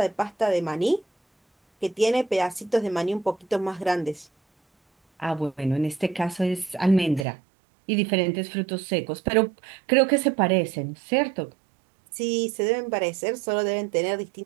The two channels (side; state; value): left; drops out; at 7.2 s